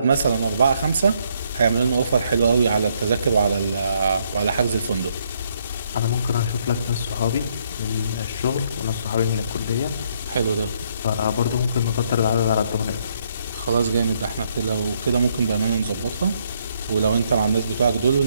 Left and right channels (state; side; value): inverted; both; correlation -0.71